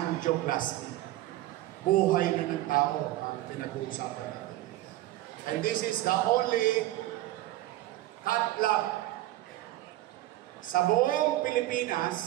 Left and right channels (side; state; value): left; quieter; 15.9 dB